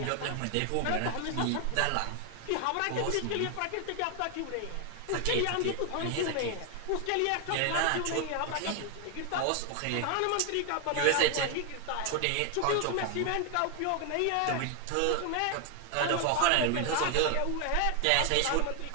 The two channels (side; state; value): both; different; correlation 0.00